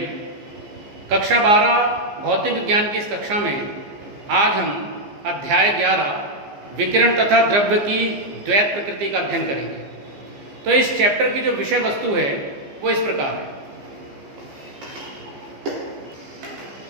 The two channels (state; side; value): late; left; 15 ms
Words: कक्षा 12 भौतिक विज्ञान की इस कक्षा में आज हम अध्याय 11 विकिरण तथा द्रव्य की द्वैत प्रकृति का अध्ययन करेंगे। तो इस चैप्टर की जो विषय वस्तु है वो इस प्रकार है।